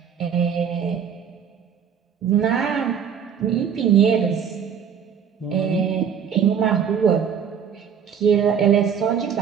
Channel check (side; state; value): left; quieter; 7.6 dB